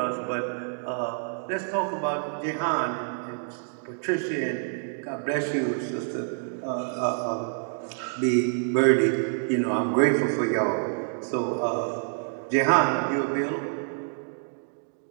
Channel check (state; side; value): silent; left; digital silence